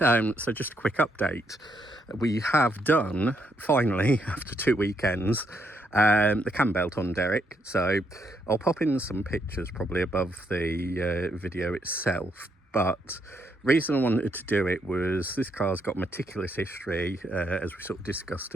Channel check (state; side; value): normal; both; correlation 0.75